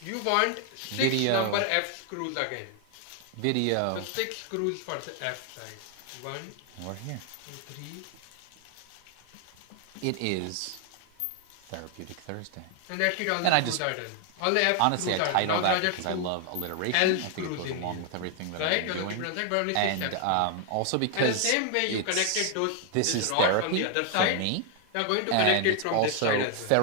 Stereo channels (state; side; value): different; both; correlation 0.00